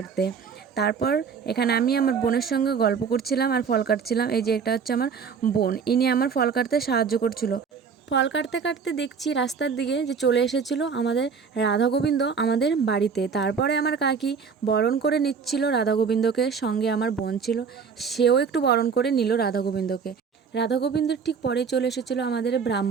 তারপর এখানে আমি আমার বোনের সঙ্গে গল্প করছিলাম আর ফল কাটছিলাম। এই যে এটা হচ্ছে আমার বোন, ইনি আমার ফল কাটতে সাহায্য করছিল। ফল কাটতে কাটতে দেখছি রাস্তার দিকে যে চলে এসেছিল আমাদের রাধা গোবিন্দ আমাদের বাড়িতে। তারপরে আমার কাকি বরণ করে নিচ্ছিল রাধা গোবিন্দকে, সঙ্গে আমার বোন ছিল, সেও একটু বরণ করে নিল রাধা গোবিন্দকে। রাধা গোবিন্দর ঠিক পরে চলে এসেছিলো আমাদের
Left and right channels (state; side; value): quieter; left; 6.0 dB